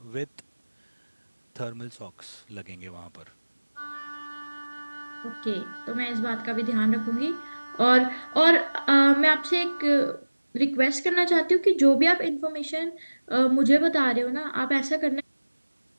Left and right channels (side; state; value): both; inverted; correlation -1.00